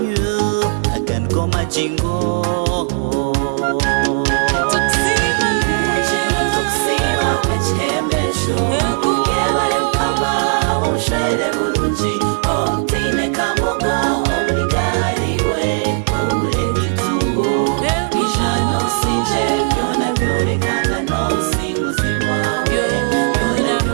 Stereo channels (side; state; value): left; silent; 62 dB below the other